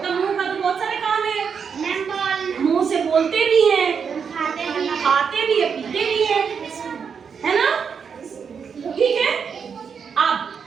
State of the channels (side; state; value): left; quieter; 6.5 dB